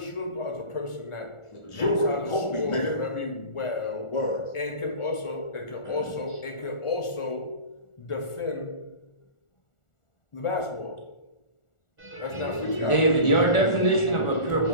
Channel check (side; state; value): right; late; 1.4 ms